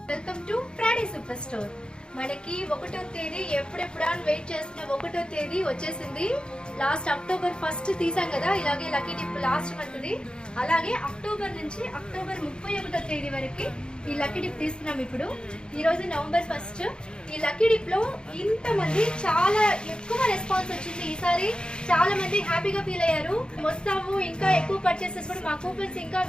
Welcome to Friday super store. మనకి 1వ తేదీ ఎప్పుడెప్పుడా వెయిట్ చేస్తున్న 1వ తేదీ వచ్చేసింది. లాస్ట్ అక్టోబర్ 1 తీసాం కదా, ఇలాగే లక్కీ డిప్ లాస్ట్ మంత్ది. అలాగే అక్టోబర్ నుంచి అక్టోబర్ 31వ తేదీ వరకు ఈ లక్కీ డిప్ తీస్తున్నాం. ఇప్పుడు ఈ రోజు నవంబర్ 1. ఈ లక్కీ డిప్ లో ఇంతమంది చాలా ఎక్కువ రెస్పాన్స్ వచ్చింది. ఈసారి చాలా మంది హ్యాపీగా ఫీల్ అయ్యారు. వస్తాము, ఇంకా ఎక్కువ పర్చేసెస్ కూడా మా కూపన్స్ ఇంకా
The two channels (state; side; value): late; right; 0.050 ms